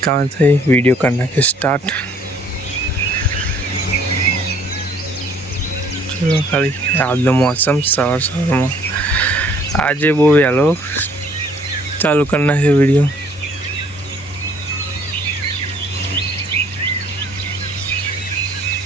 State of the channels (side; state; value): both; normal; correlation 0.59